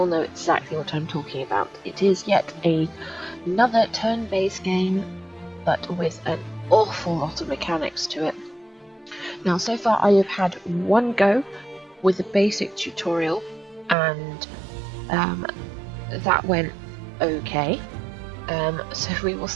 know exactly what I'm talking about. It is yet another turn-based game, but with an awful lot of mechanics to it. Now, so far I have had one go with the basic tutorial, and that went okay. So we will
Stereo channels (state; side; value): drops out; left; at 14.0 s